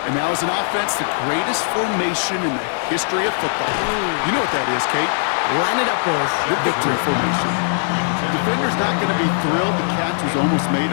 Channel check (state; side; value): silent; right; 61 dB below the other